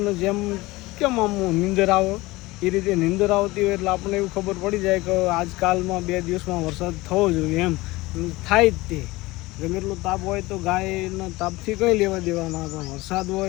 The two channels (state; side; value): quieter; right; 20.6 dB